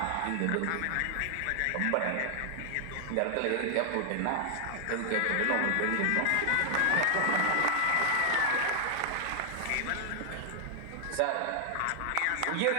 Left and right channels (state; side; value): different; both; correlation -0.01